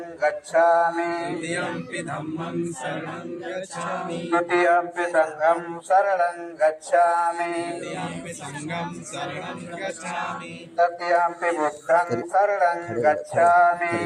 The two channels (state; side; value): identical; both; correlation 1.00